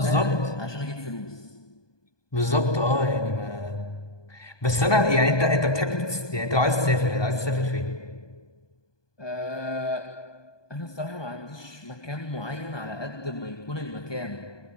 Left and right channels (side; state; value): right; late; 1.2 ms